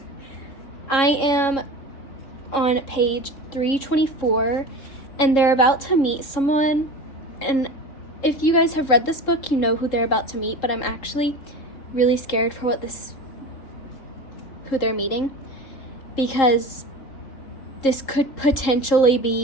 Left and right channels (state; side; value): late; right; 3.7 ms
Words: I am on page 324, and they're about to meet someone. And if you guys have read this book, you know who they're about to meet, but I'm actually really scared for who they're meeting, because this could potentially